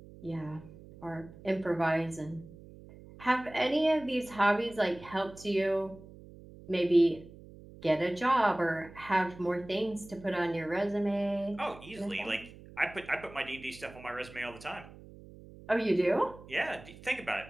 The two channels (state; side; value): noise; right; hum, 19 dB below the sound